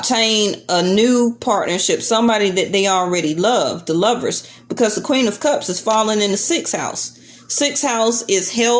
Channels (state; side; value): identical; both; correlation 1.00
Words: a new partnership, somebody that they already love, the Lovers, because the Queen of Cups is falling in the 6th house. 6th house is